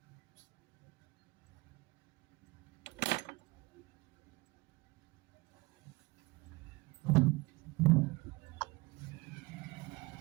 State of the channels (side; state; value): left; quieter; 23.6 dB